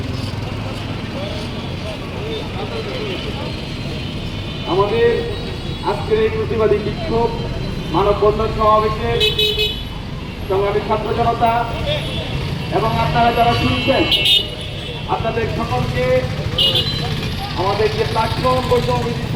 আমাদের আজকের এই প্রতিবাদী বিক্ষোভ মানববন্ধন সমাবেশের সংগ্রামী ছাত্র জনতা এবং আপনারা যারা শুনছেন, আপনাদের সকলকে আমাদের যে প্ল্যাটফর্ম বৈষম্যবিরোধী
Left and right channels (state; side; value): identical; both; correlation 1.00